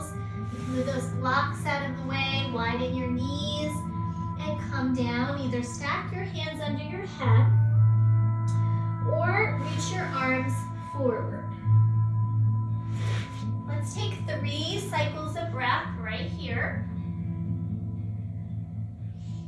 You can move those blocks out of the way, widen your knees, and come down. Either stack your hands under your head or reach your arms forward. Let's take 3 cycles of breath right here.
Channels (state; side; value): identical; both; correlation 1.00